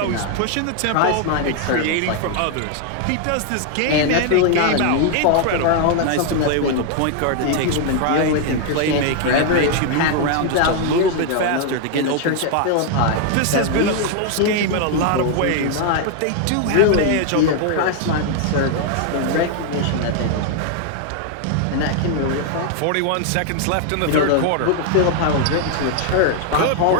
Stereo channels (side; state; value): both; different; correlation 0.00